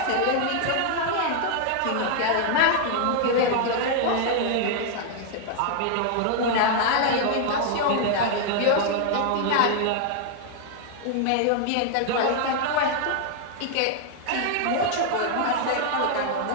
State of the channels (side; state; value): both; different; correlation 0.00